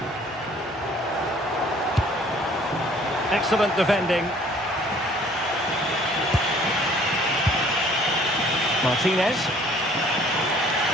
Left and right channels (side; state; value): both; normal; correlation 0.56